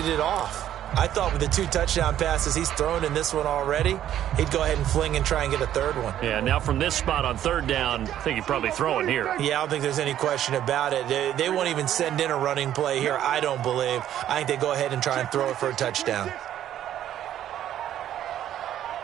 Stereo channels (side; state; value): left; quieter; 11.4 dB